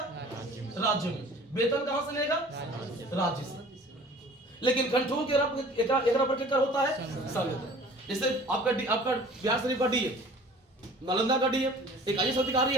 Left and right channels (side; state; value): both; normal; correlation 0.48